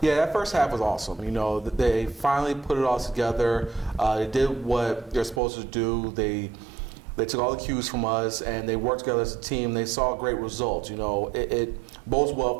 Yeah, that first half was awesome. You know, they finally put it all together. They did what they're supposed to do. They took all the cues from us, and they worked together as a team. They saw great results. You know, it bodes well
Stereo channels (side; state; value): left; drops out; at 5.4 s